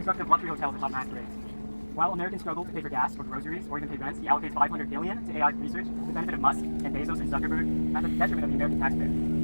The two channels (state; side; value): inverted; both; correlation -1.00